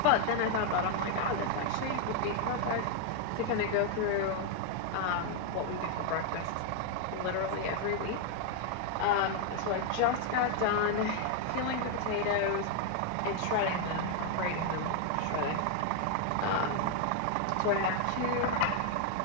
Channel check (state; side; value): different; both; correlation 0.00